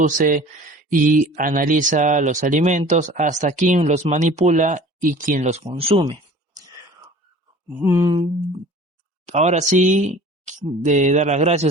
y analiza los alimentos hasta quien los manipula y quien los consume. Ahora sí, de dar las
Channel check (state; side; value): normal; both; correlation 0.45